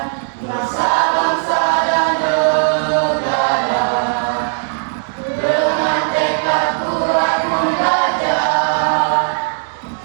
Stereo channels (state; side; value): silent; left; 65 dB below the other